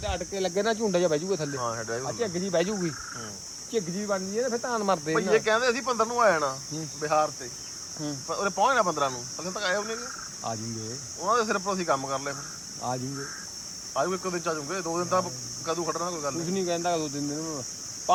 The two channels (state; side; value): identical; both; correlation 1.00